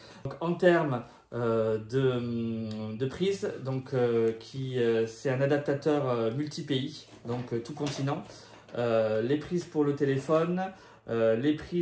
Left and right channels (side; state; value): both; identical; correlation 1.00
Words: Donc, en termes de prise, donc c'est un adaptateur multi-pays, donc tout continent. Les prises pour le téléphone, les